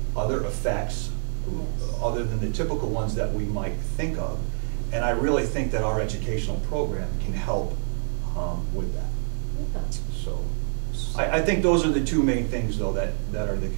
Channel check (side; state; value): left; silent; digital silence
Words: other effects, Yes. other than the typical ones that we might think of. And I really think that our educational program can help with that. Yeah. So I think those are the two main things, though, that are the